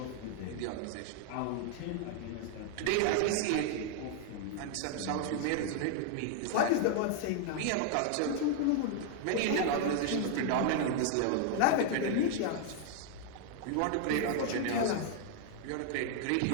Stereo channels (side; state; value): both; different; correlation 0.00